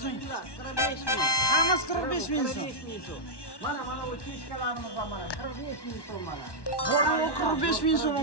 Hammasi 45 ming so'm. Mana bu kishkalarimiz ham mana 45 ming so'm mana. Bor yo'q 45 ming so'm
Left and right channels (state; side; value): late; right; 1.1 ms